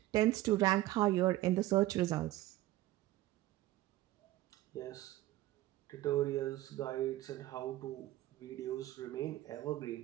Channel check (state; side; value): quieter; left; 16.0 dB